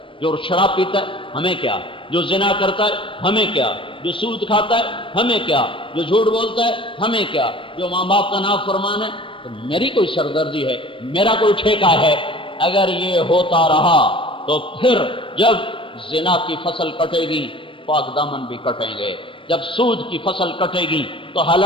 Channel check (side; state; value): right; late; 0.25 ms